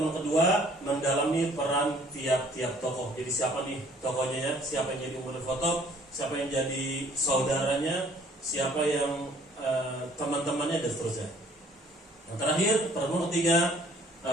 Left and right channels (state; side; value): normal; both; correlation 0.57